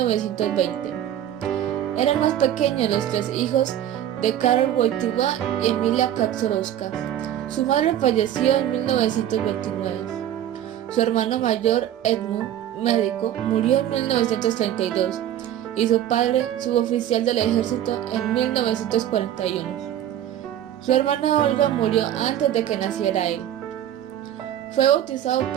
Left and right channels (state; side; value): quieter; left; 11.4 dB